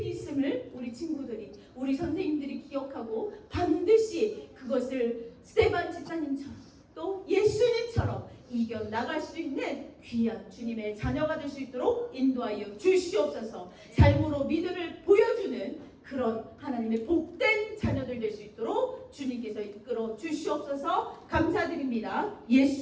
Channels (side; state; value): both; identical; correlation 1.00